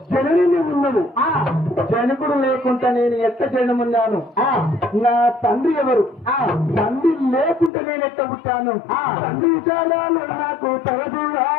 జనని ఉన్నది. జనకుడు లేకుండా నేను ఎట్ట జనమున్నాను? నా తండ్రి ఎవరు? తండ్రి లేకుంటే నేను ఎట్ట పుట్టాను? తండ్రి చాలాలు నాకు తగదుగా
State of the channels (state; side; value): drops out; right; at 7.7 s